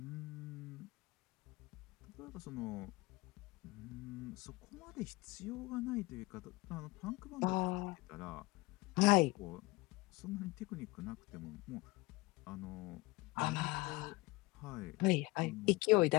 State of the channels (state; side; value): quieter; right; 22.6 dB